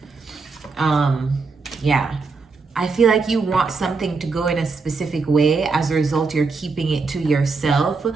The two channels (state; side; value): quieter; left; 4.4 dB